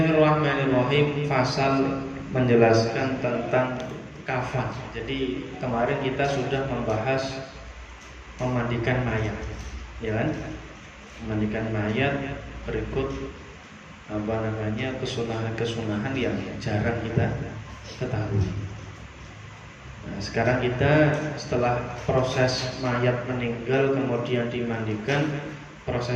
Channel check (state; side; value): identical; both; correlation 1.00